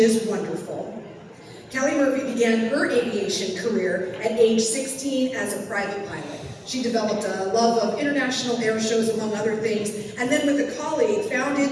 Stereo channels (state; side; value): identical; both; correlation 1.00